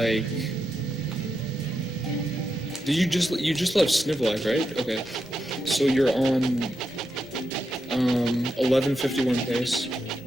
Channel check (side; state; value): both; normal; correlation 0.85